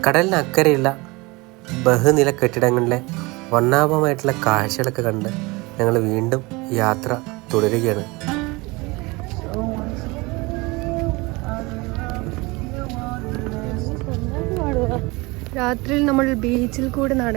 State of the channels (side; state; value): left; quieter; 24.3 dB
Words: കടലിന് അക്കരെയുള്ള ബഹുനില കെട്ടിടങ്ങളിലെ വർണ്ണാഭമായിട്ടുള്ള കാഴ്ചകളൊക്കെ കണ്ട് ഞങ്ങൾ വീണ്ടും യാത്ര തുടരുകയാണ്. രാത്രിയിൽ നമ്മൾ ബീച്ചിൽ കൂടെ